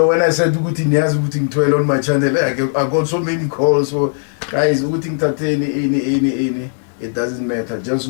when I said ukuthi niyazi ukuthi ngithwele on my channel, I got so many calls. So guys, ukuthi ngithatheni ini. It doesn't matter. Just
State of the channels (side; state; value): right; silent; digital silence